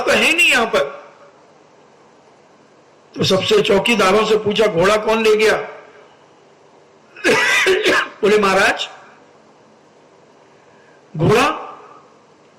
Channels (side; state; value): both; identical; correlation 1.00